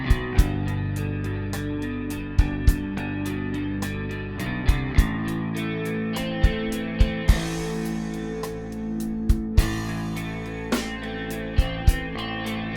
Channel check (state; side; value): identical; both; correlation 1.00